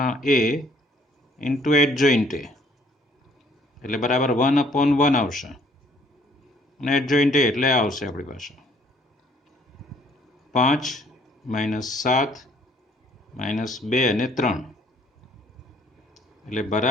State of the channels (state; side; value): normal; both; correlation 0.61